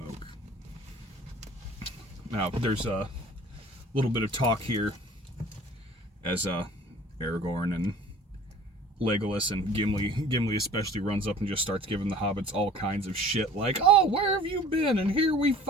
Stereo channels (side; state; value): both; normal; correlation 0.47